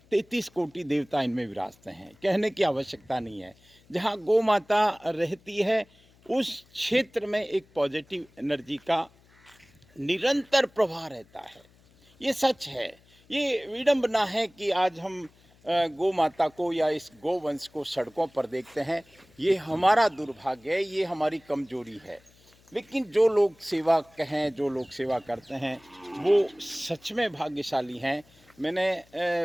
33 कोटि देवता इनमें विराजते हैं, कहने की आवश्यकता नहीं है। जहाँ गौ माता रहती है उस क्षेत्र में एक पॉजिटिव एनर्जी का निरंतर प्रवाह रहता है। ये सच है। ये विडंबना है कि आज हम गौ माता को या इस गोवंश को सड़कों पर देखते हैं। ये हमारा दुर्भाग्य है, ये हमारी कमजोरी है। लेकिन जो लोग सेवा कहें, जो लोग सेवा करते हैं, वो सच में भाग्यशाली हैं। मैंने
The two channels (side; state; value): left; noise; hum, 29 dB below the sound